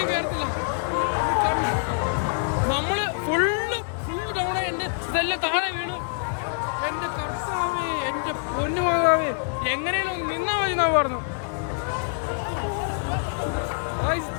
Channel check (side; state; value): right; silent; digital silence